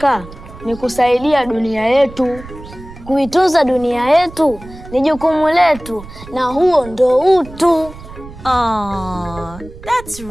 ni kusaidia dunia yetu. Kuitunza dunia yetu ni jukumu letu, na huo ndo utu. Aww, that's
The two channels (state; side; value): noise; right; rumble, 16 dB below the sound